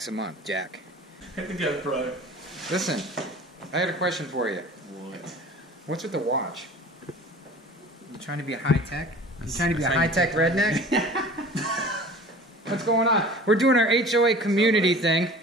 a month, Jack. Yeah, bro. Listen, I had a question for you. What? What's with the watch? You trying to be a high-tech? You trying to be a high-tech redneck? What's going on? We're doing our HOA community thing.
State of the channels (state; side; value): normal; both; correlation 0.42